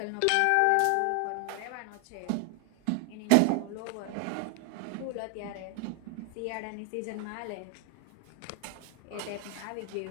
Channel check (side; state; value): both; different; correlation 0.00